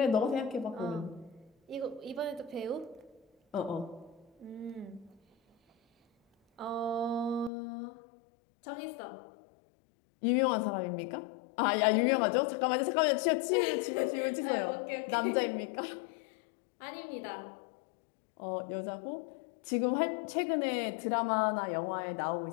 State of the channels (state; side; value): drops out; right; at 7.5 s